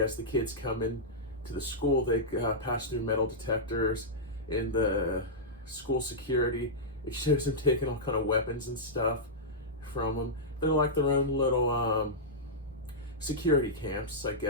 the kids come in to the school, they pass through metal detectors. In the school security, it shows them taking all kind of weapons and stuff from them. They're like their own little security camps, I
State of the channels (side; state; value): both; normal; correlation -0.11